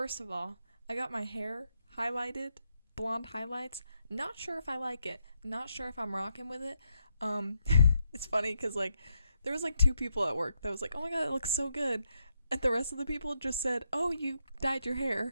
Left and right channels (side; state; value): both; inverted; correlation -0.81